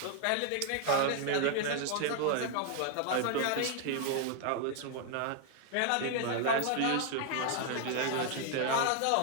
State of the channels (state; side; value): different; both; correlation 0.00